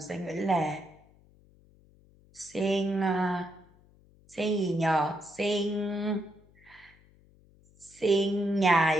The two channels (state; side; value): noise; left; hum, 29 dB below the sound